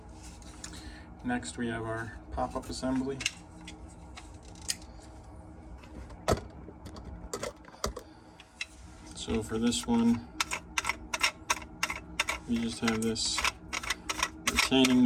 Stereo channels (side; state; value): both; identical; correlation 1.00